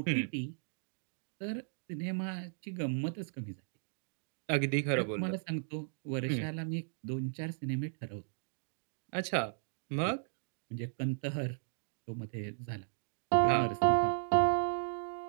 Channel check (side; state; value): left; silent; digital silence